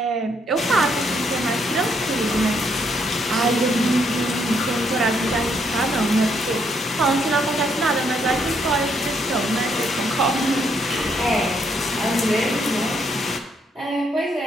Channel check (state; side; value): normal; both; correlation 0.73